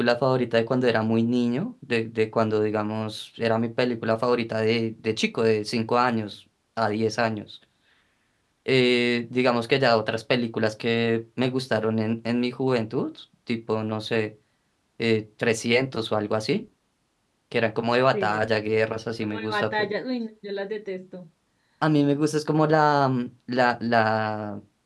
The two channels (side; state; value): both; identical; correlation 1.00